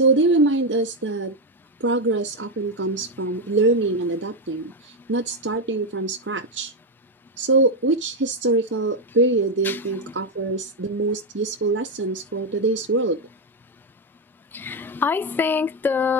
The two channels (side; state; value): both; normal; correlation 0.06